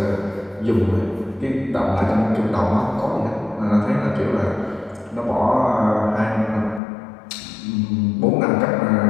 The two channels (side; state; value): right; drops out; at 6.8 s